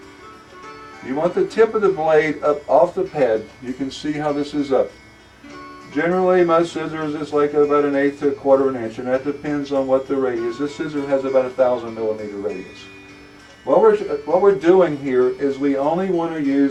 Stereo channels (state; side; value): identical; both; correlation 1.00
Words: You want the tip of the blade up off the pad. You can see how this is up. Generally, most scissors is like about 1/8 to 1/4 inch, and that depends on what the radius. This scissor has about 1,000 millimeter radius. What we're doing here is we only want to